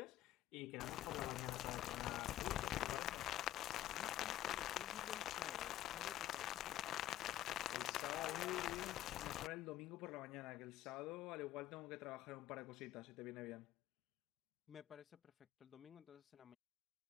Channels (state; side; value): quieter; right; 13.6 dB